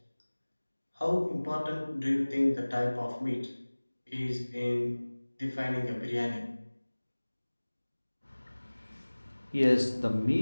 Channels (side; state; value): both; inverted; correlation -1.00